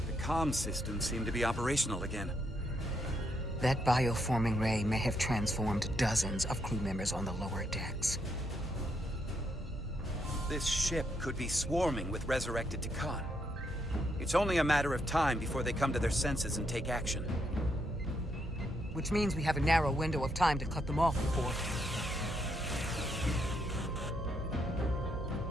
The comm systems seem to be operational again. That bioforming ray may have transformed dozens of crew members on the lower decks. This ship could be swarming with resurrected Takan. It's only a matter of time before they come to their senses and take action. Which means we have a narrow window of time to cut them off before...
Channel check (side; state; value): both; normal; correlation 0.77